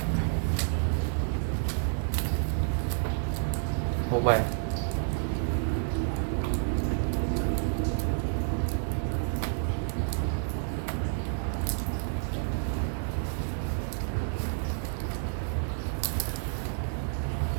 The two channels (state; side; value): silent; left; 57 dB below the other